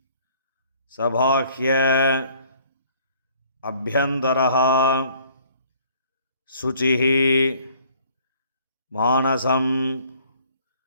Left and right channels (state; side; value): inverted; both; correlation -0.58